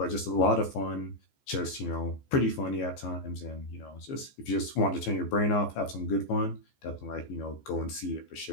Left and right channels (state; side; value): late; right; 14 ms